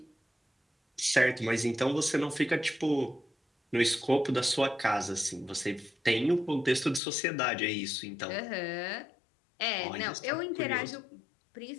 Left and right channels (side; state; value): right; drops out; at 7.0 s